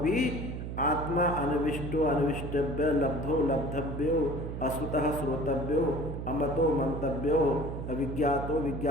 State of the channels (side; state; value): right; noise; hum, 6 dB below the sound